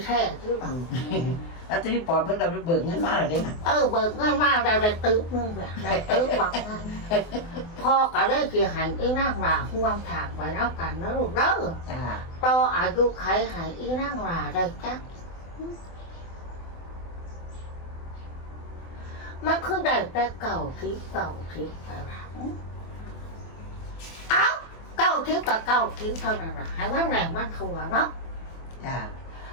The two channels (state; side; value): late; right; 24 ms